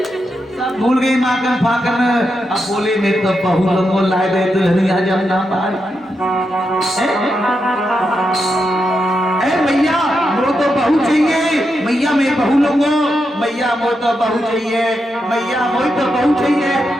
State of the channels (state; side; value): normal; both; correlation 0.85